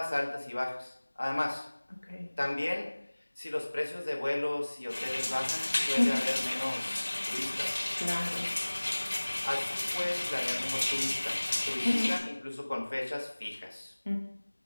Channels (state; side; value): inverted; both; correlation -1.00